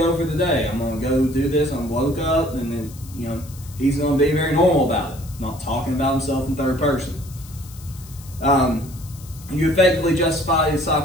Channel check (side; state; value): left; noise; hiss, 20 dB below the sound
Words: for the day. I'm going to go do this. I'm woke up, and then, you know, he's going to be very normal about it, not talking about himself in third person. You effectively justify the